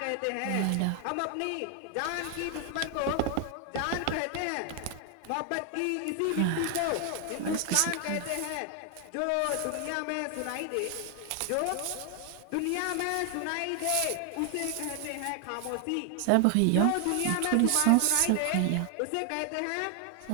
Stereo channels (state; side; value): different; both; correlation 0.00